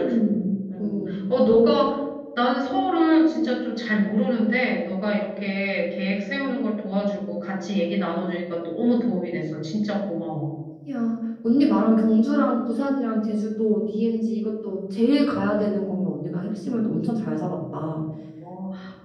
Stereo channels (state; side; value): identical; both; correlation 1.00